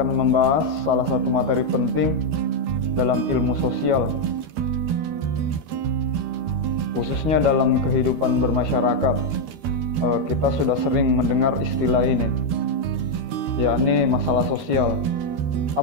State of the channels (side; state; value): left; late; 13 ms